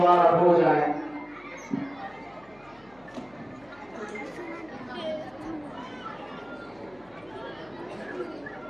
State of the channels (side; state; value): left; noise; hum, 28 dB below the sound